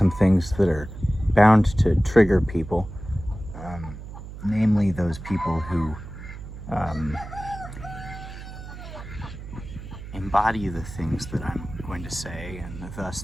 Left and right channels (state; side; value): noise; right; hum, 12 dB below the sound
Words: things that are bound to trigger people, namely those people who embody the things that I'm going to say, and thus